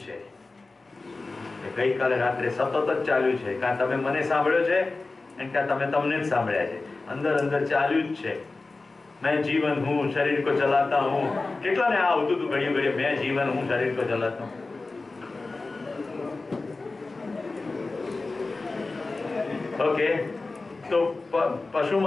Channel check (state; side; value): quieter; right; 3.5 dB